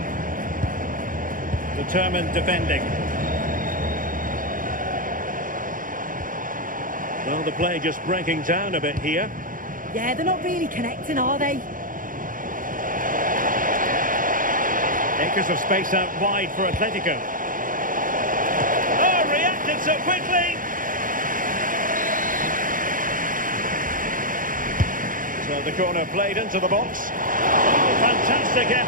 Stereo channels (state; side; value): late; left; 0.40 ms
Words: Determined defending. Well, the play just breaking down a bit here. Yeah, they're not really connecting, are they? Acres of space out wide for Atletico. Oh, reacted so quickly! So the corner played into the box. Oh, fantastic